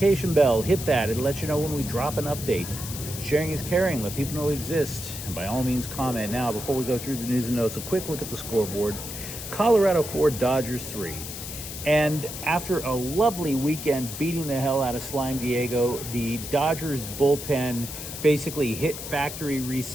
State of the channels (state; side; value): noise; left; hiss, 9 dB below the sound